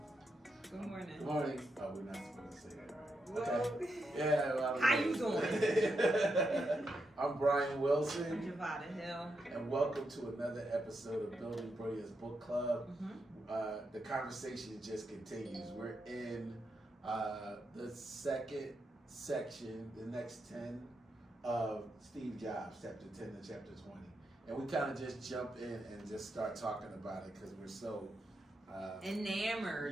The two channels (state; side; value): normal; both; correlation 0.84